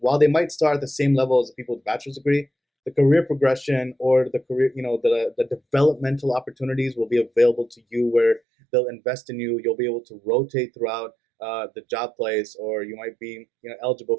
they might start at the same level as the people with bachelor's degree, the career progression or the career, the developmental opportunities will be available to you where they'll invest in you. You'll be able to rotate throughout the job place, or you might be, eligible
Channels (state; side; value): drops out; left; at 8.4 s